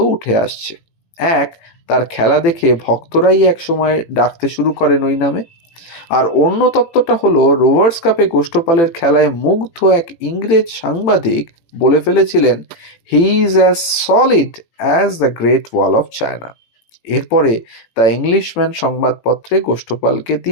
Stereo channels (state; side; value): late; right; 18 ms